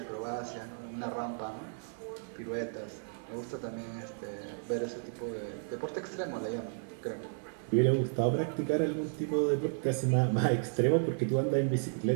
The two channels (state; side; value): silent; left; digital silence